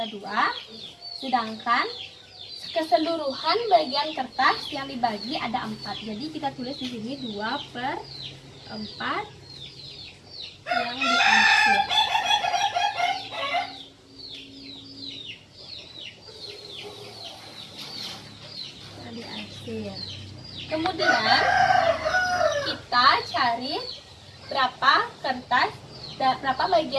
2. Sedangkan keseluruhan bagian kertas yang dibagi ada 4. Jadi kita tulis di sini 2 per 4 yang diarsir. Kemudian kita cari berapa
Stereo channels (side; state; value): both; identical; correlation 1.00